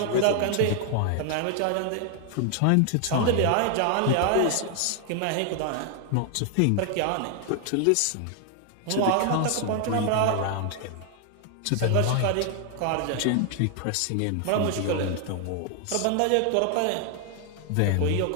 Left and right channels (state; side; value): different; both; correlation 0.00